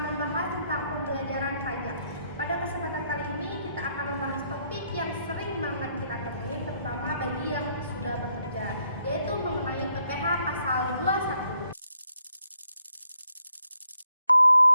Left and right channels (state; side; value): inverted; both; correlation -0.74